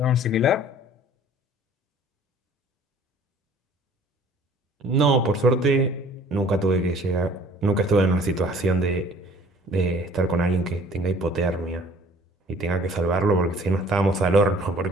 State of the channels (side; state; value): both; normal; correlation 0.52